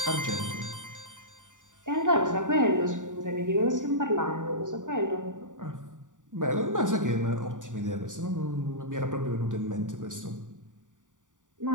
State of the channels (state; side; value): late; left; 0.87 ms